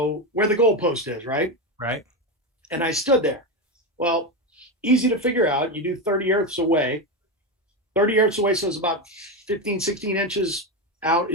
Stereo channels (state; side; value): normal; both; correlation 0.13